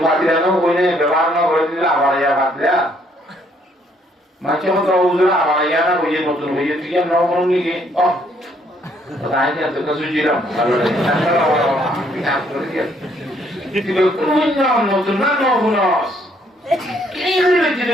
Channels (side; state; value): both; normal; correlation 0.67